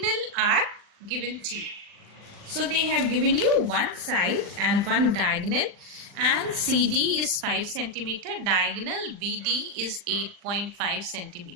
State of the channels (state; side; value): late; left; 40 ms